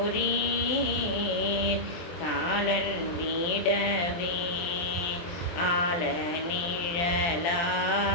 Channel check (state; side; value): late; right; 23 ms